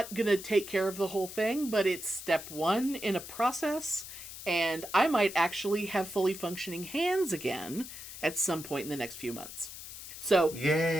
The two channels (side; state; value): left; noise; hiss, 12 dB below the sound